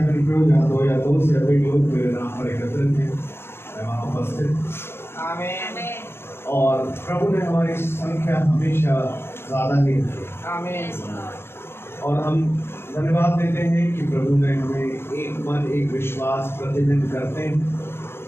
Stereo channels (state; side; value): late; right; 0.12 ms